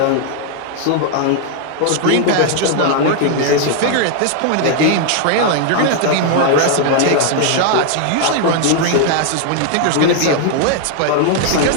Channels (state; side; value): different; both; correlation 0.00